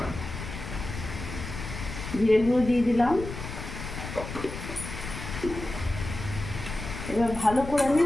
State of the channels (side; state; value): left; noise; rumble, 8 dB below the sound